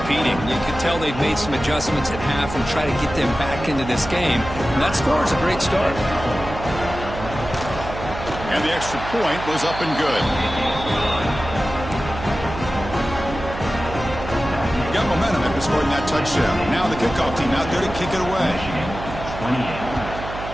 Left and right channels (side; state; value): right; noise; hum, 9 dB below the sound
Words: competing. You can tell they've made some adjustments at half and try to get them back into this game. And that score is a great start. And the extra point was up and good. Got momentum after scoring that touchdown. Now the kickoff team out there to kick it away. 28.